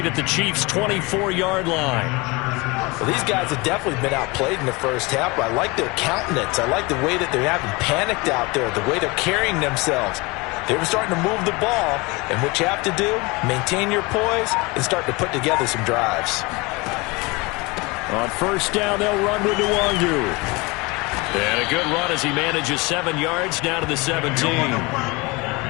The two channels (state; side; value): quieter; right; 25.5 dB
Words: at the Chiefs' 24-yard line. Well, these guys have definitely been outplayed in the first half, but I like their countenance. I like the way that they haven't panicked out there, the way they're carrying themselves. They were starting to move the ball, and what you have to do, maintain your poise and start to put together some drives. On first down, they'll run with Nwangu. And a good run as he manages 7 yards down to the 17.